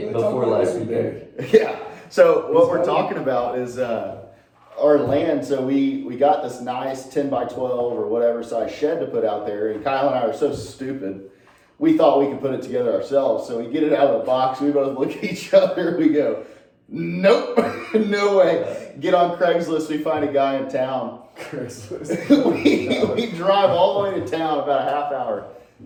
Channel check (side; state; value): both; identical; correlation 1.00